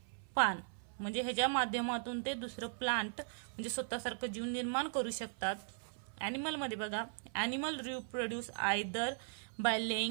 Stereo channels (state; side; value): silent; left; 52 dB below the other